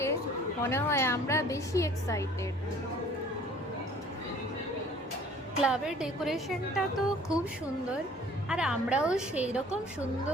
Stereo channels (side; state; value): both; normal; correlation 0.52